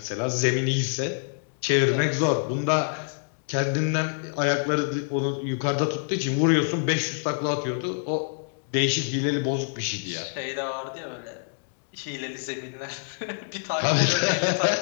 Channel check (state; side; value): silent; right; digital silence